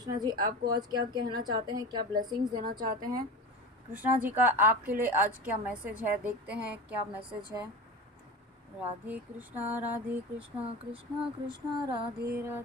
जी आपको आज क्या कहना चाहते हैं, क्या ब्लेसिंग्स देना चाहते हैं। कृष्णा जी का आपके लिए आज क्या मैसेज है, देखते हैं क्या मैसेज है। राधे कृष्णा कृष्णा कृष्णा राधे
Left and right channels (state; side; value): normal; both; correlation 0.28